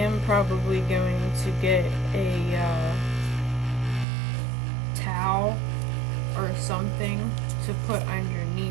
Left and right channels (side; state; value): left; drops out; at 4.0 s